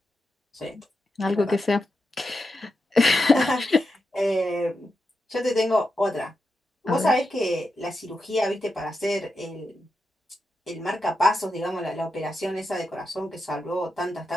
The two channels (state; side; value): normal; both; correlation 0.87